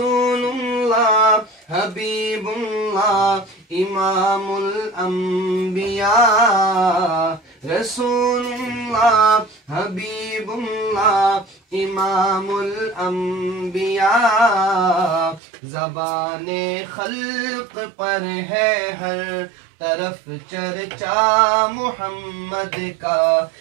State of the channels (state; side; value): drops out; left; at 15.4 s